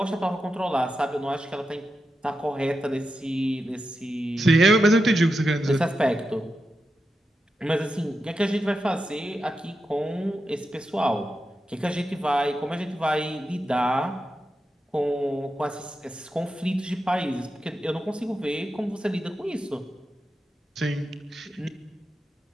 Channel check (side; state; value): both; normal; correlation 0.89